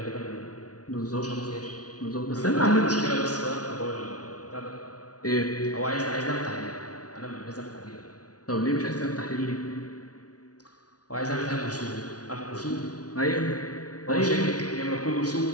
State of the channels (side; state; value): right; late; 0.68 ms